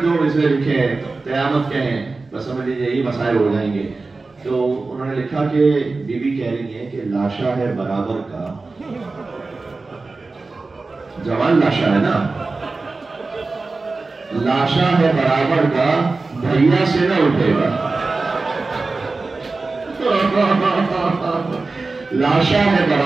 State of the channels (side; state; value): left; quieter; 3.7 dB